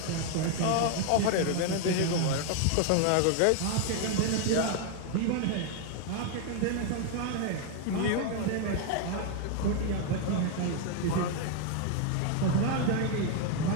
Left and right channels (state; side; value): different; both; correlation 0.00